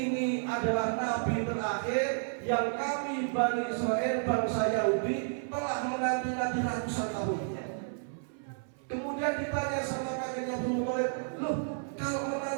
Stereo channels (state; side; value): silent; left; 57 dB below the other